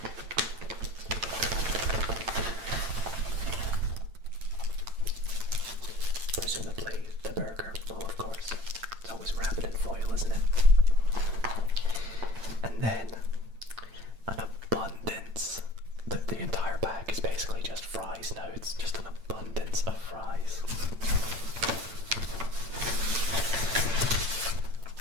presumably the burger. Oh, of course. It's always wrapped in foil, isn't it? And then an abundance. The entire bag is basically just fries now. It's just an abundance of fries.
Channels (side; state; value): left; late; 8.9 ms